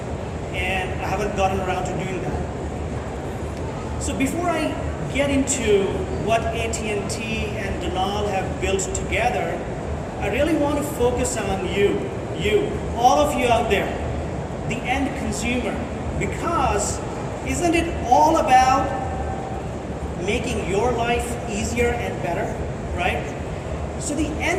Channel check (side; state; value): both; identical; correlation 1.00